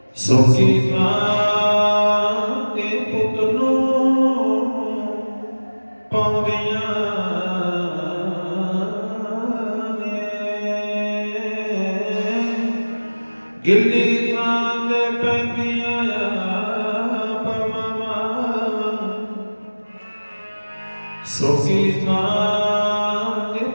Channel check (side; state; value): both; inverted; correlation -1.00